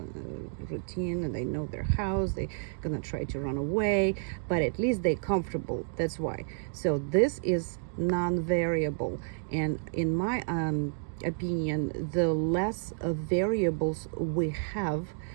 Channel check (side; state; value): left; silent; digital silence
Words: Routine, and they know their house. They're gonna try to run away, but at least they're comfortable. That's why. So this is non-variable, and in my opinion, the less variables we have